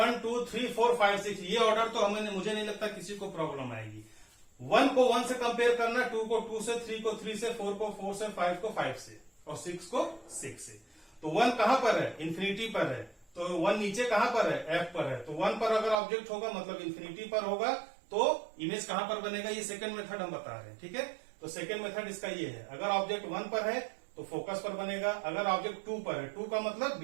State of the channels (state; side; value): drops out; left; at 16.0 s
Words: 2 3 4 5 6, ये ऑर्डर तो मुझे नहीं लगता किसी को प्रॉब्लम आएगी। 1 को 1 से कंपेयर करना, 2 को 2 से, 3 को 3 से, 4 को 4 से, 5 को 5 से, और 6 को 6 से। तो 1 कहां पर है? इन्फिनिटी पर है। तो 1 नीचे कहां पर है? F पर है। तो 1 पर अगर ऑब्जेक्ट होगा मतलब इन्फिनिटी पर होगा, तो इमेज कहां पर बनेगा? ये सेकंड मेथड हम बता रहे हैं। ठीक है, तो सेकंड मेथड इसका ये है, अगर ऑब्जेक्ट 1 पर है तो फोकस पर बनेगा, अगर ऑब्जेक्ट 2 पर है, 2 का मतलब